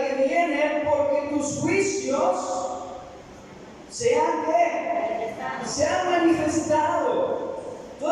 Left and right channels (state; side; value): identical; both; correlation 1.00